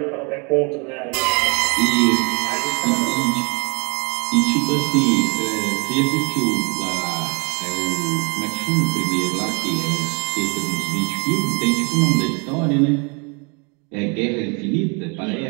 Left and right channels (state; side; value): quieter; left; 33.0 dB